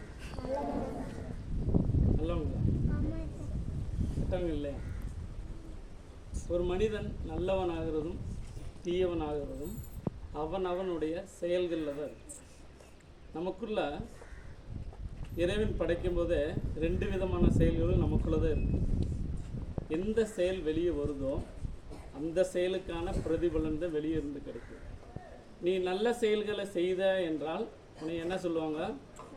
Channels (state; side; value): identical; both; correlation 1.00